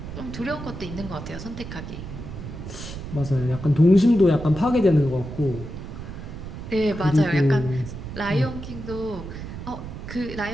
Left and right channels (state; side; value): noise; right; rumble, 9 dB below the sound